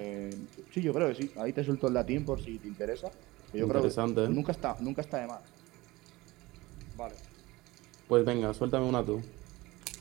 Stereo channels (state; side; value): quieter; left; 20.5 dB